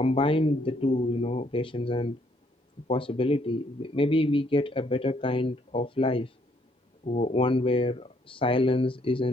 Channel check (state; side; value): normal; both; correlation 0.68